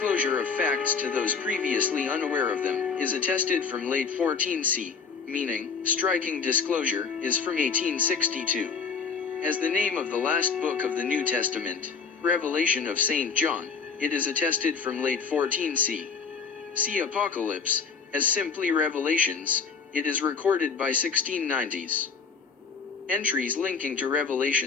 of facts to those previously unaware of them, is attested from late 14c, meaning, striking disclosure, is from 1862. As the name of the last book of the New Testament, Revelation of St. John, it is attested from late 14c. See Apocalypse, as simply Revelations, it is recorded by 1690s. Entries linking to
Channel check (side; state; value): right; quieter; 5.7 dB